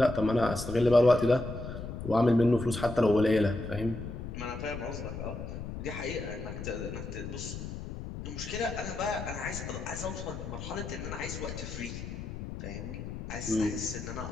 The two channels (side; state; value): left; noise; rumble, 8 dB below the sound